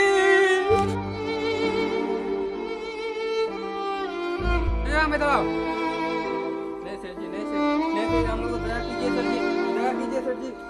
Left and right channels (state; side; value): identical; both; correlation 1.00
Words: मैं दबाओ नहीं सेठ जी, नहीं सेठ, हम लोग को दया कीजिए सेठ जी, दया कीजिए सेठ जी।